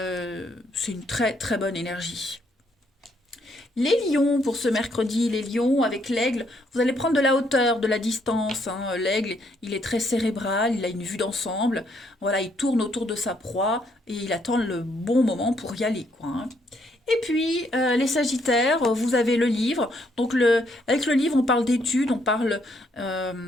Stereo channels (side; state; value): both; normal; correlation 0.71